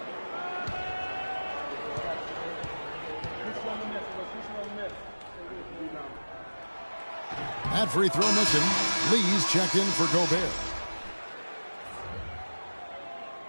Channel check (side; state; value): both; inverted; correlation -1.00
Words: That free throw missing. Lee's checked in for Gobert.